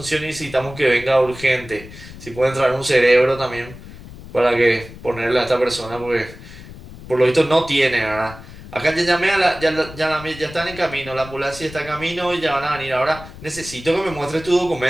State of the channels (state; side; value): noise; left; rumble, 16 dB below the sound